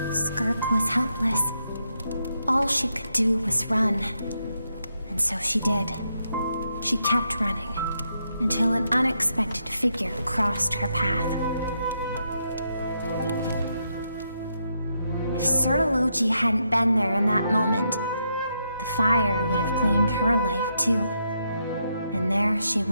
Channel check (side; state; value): both; inverted; correlation -0.80